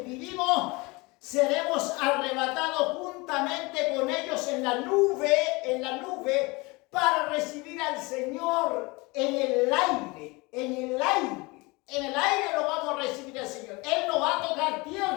seremos arrebatados juntamente con ellos en la nube para recibir al Señor en el aire. En el aire lo vamos a recibir al Señor. Él no va a tocar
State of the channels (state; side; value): quieter; right; 25.1 dB